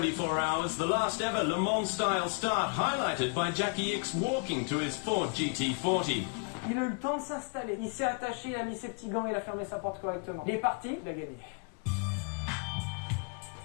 hours, the last ever Le Mans style start, highlighted by Jackie X walking to his Ford GT40. Il a eu le temps de s'installer. Il s'est attaché, il a mis ses petits gants, il a fermé sa porte correctement. Il est parti, il a gagné.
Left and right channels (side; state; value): right; quieter; 35.3 dB